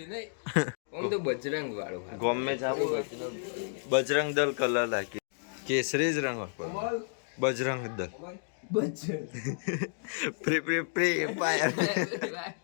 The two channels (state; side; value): silent; right; digital silence